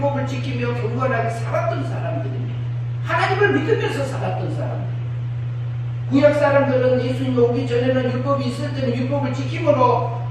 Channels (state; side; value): identical; both; correlation 1.00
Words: 지키며 경건하게 살았던 사람들입니다. 하나님을 믿으면서 살았던 사람들. 구약 사람들은 예수님이 오기 전에는 율법이 있을 때는 율법을 지킴으로